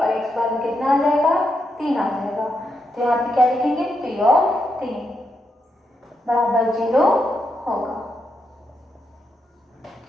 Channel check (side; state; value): both; normal; correlation 0.82